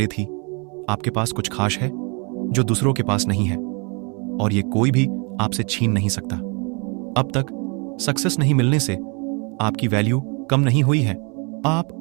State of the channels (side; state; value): left; quieter; 33.4 dB